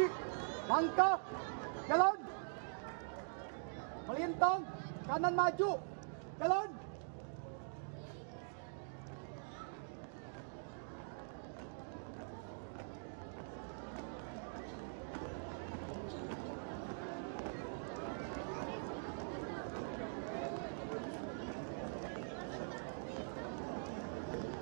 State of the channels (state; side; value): silent; left; digital silence